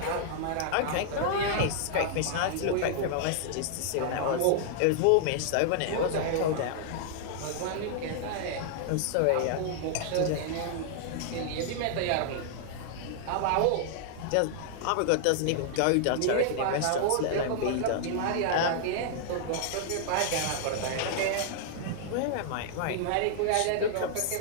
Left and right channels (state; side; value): different; both; correlation -0.01